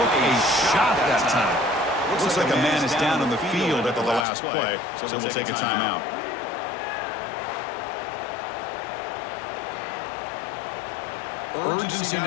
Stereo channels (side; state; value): right; drops out; at 4.2 s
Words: a shot that time. Looks like a man is down on the field after the last play, so we'll take a timeout. Urgency